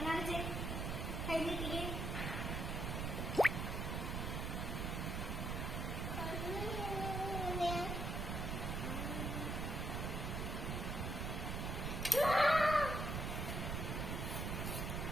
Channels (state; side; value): noise; right; rumble, 1 dB below the sound